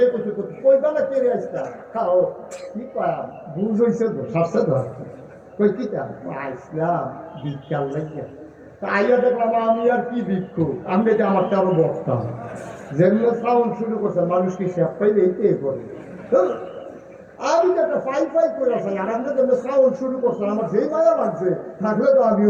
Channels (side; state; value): both; identical; correlation 1.00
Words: করছে কই বেলা কেড়ে আসতাম খাও কি কয়া বুঝ হয়েছে তো সারছে তো কই কি ইসলাম বিজ্ঞান লাগে। তা আইয়া দেখলাম আমি আর কি ভিক্ষুক, আমি যে আমারটা আরো বসতাম। যেগুলো সাউন্ড শুরু করছে মানুষ কি সে পাইলে এইটাই করে। আমি তো একটা ফাই ফাই করে আসি, আর আমরা যেগুলো সাউন্ড শুরু করছে আমার যেই মায়া লাগছে থাকলে তো